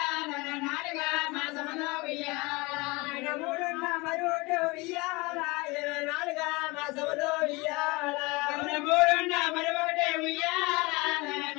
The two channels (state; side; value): quieter; right; 24.7 dB